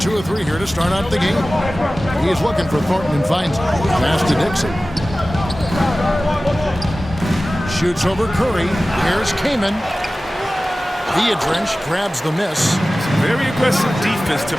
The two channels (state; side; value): normal; both; correlation 0.96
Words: of 3 here to start out the game. He's looking for Thornton and finds it. Pass to Dixon. shoots over Curry. Here's Kaman. Viadrich grabs the miss. Very aggressive defense to